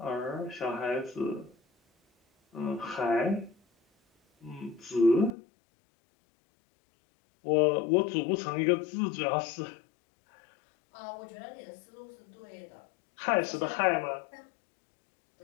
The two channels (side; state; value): right; drops out; at 5.4 s